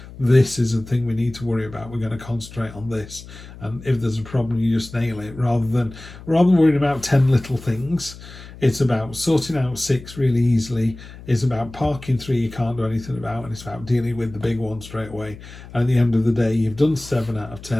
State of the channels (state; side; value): noise; left; hum, 16 dB below the sound